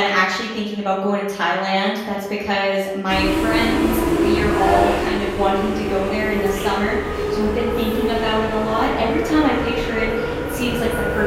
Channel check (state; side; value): identical; both; correlation 1.00